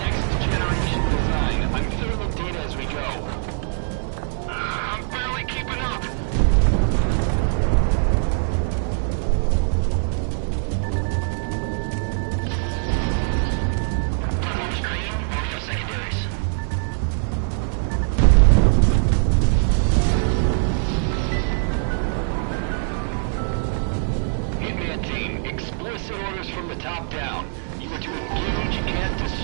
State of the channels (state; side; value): silent; left; 62 dB below the other